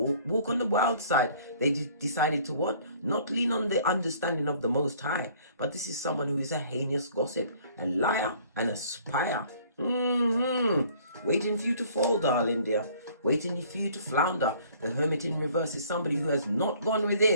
on the wild side. They decided to what? Not lean on the understanding of the Most High. But this is someone who is a heinous gossip, a liar, and a spire. Waiting for you to fall, darling dear. Waiting for you to flounder. The Hermit in reverse is somebody who has not gone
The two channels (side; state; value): both; inverted; correlation -0.56